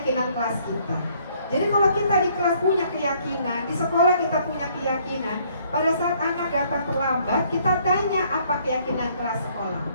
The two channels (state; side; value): inverted; both; correlation -0.64